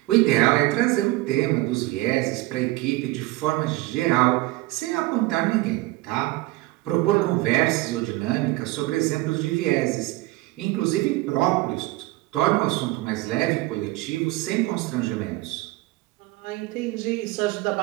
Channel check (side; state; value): left; quieter; 19.8 dB